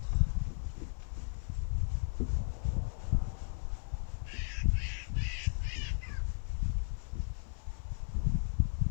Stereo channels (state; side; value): silent; right; 54 dB below the other